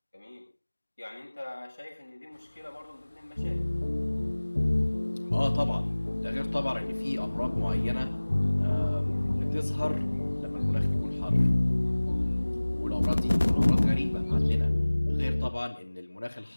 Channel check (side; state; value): both; inverted; correlation -1.00